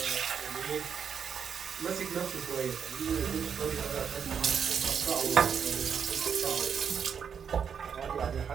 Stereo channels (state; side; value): quieter; left; 7.2 dB